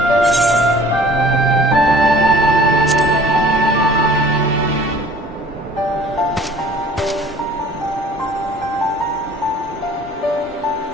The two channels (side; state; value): both; normal; correlation 0.50